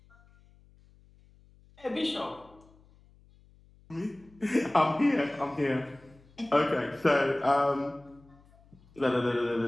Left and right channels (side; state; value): left; noise; hum, 28 dB below the sound